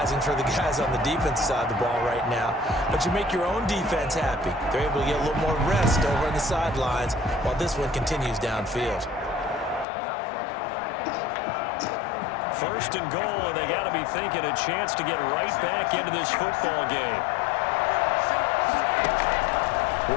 for the guys on the defense side of the ball right now, but you make your own defense happy. They're able to get a little more rest over on the sidelines while this one continues downfield. 1st and goal, and they got to be thinking a chance to get right back into this football game.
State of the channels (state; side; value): drops out; right; at 9.9 s